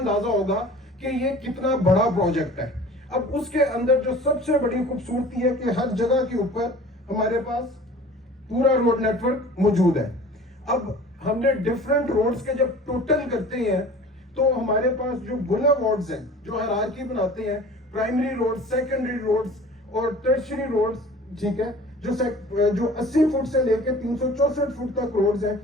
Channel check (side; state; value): both; normal; correlation 0.44